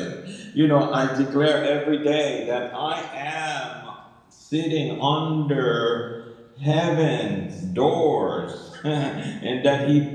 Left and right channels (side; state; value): both; identical; correlation 1.00